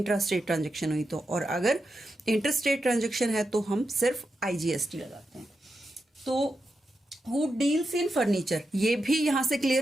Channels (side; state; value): both; normal; correlation 0.88